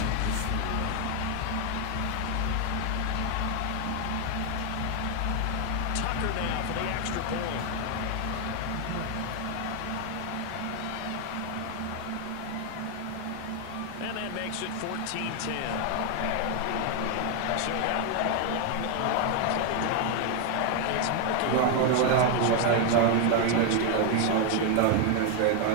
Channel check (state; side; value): different; both; correlation 0.01